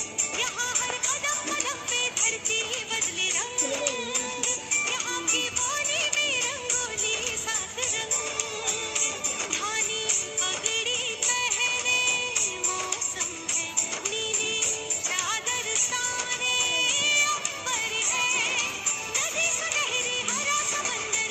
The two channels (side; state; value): both; identical; correlation 1.00